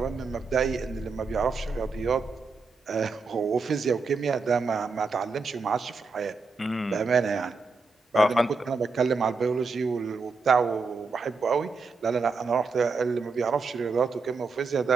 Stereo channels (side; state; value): left; quieter; 4.3 dB